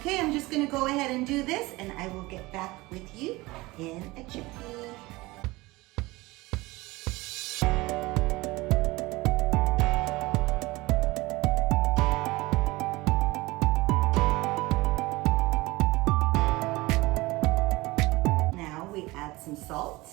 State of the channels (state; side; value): quieter; left; 21.2 dB